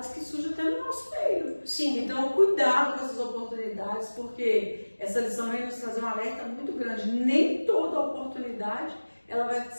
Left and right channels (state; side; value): inverted; both; correlation -1.00